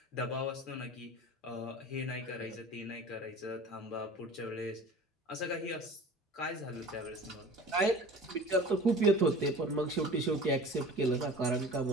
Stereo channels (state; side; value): normal; both; correlation 0.40